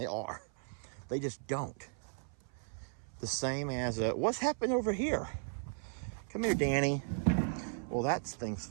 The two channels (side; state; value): left; silent; 54 dB below the other